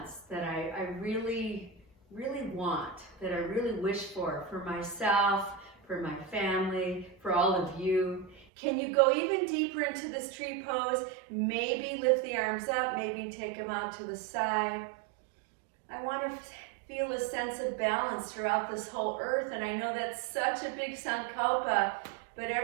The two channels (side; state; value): left; drops out; at 8.5 s